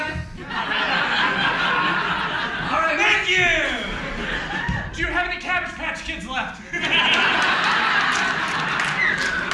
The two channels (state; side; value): identical; both; correlation 1.00